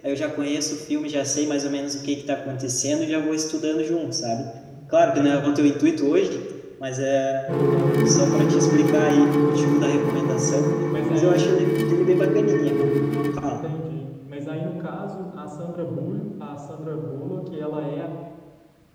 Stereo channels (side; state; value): both; identical; correlation 1.00